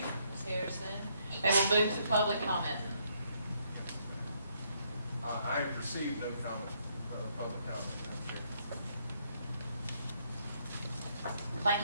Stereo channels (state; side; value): inverted; both; correlation -0.72